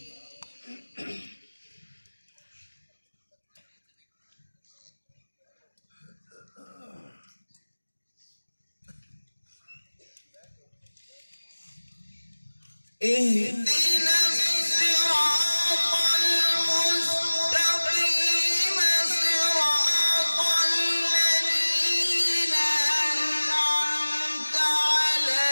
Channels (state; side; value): inverted; both; correlation -1.00